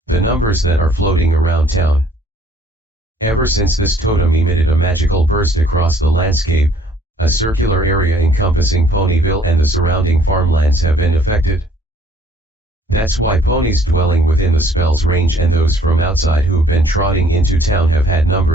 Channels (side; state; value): both; normal; correlation 0.60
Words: the numbers that are floating around town. Ever since this totem emitted a magical burst across the landscape, a circular area encompassing Ponyville and the surrounding farmlands have been affected. That's why ponies dwelling within the spell's range and those from outside who've been trotting into town have had